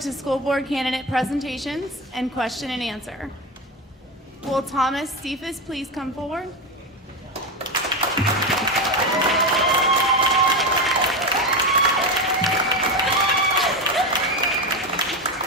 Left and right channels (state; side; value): normal; both; correlation 0.16